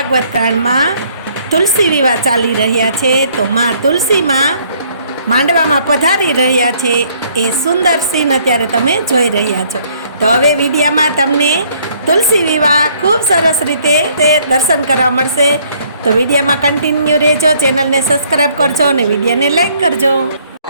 कांड में तुलसी विवाह चाली रह्या छे। तो माँ तुलसी में मांडवा में पधारी रह्या छे ए सुंदर सीन अत्यारे तमे जोई रह्या छो। तो हवे विडियो में तमने तुलसी विवाह खूब सरस रीते दर्शन करवा मळशे। तो विडियो में कंटिन्यू रहेजो, चैनल ने सब्सक्राइब करजो और विडियो ने लाइक करजो।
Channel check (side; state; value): both; inverted; correlation -0.63